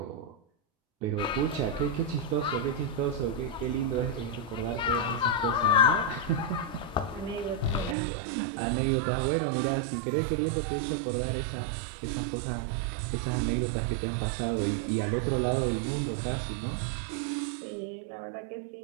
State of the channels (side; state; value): left; drops out; at 8.0 s